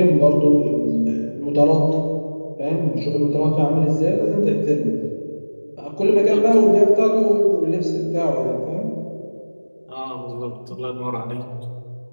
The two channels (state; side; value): inverted; both; correlation -1.00